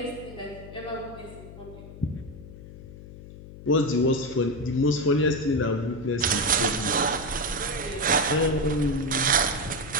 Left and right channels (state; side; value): noise; left; hum, 15 dB below the sound